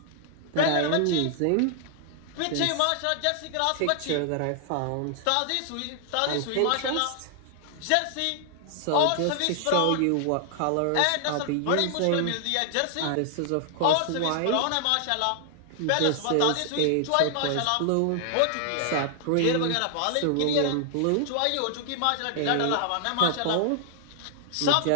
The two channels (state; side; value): different; both; correlation 0.00